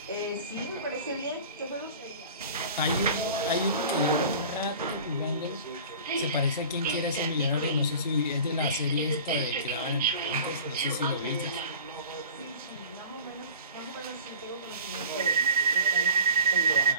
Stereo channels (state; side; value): inverted; both; correlation -0.40